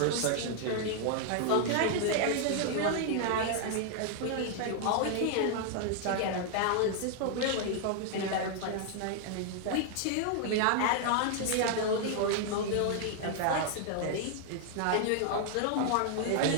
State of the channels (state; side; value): different; both; correlation 0.00